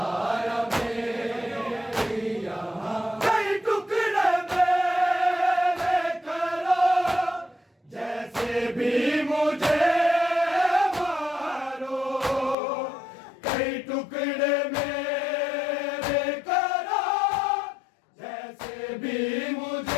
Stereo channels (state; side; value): drops out; right; at 12.6 s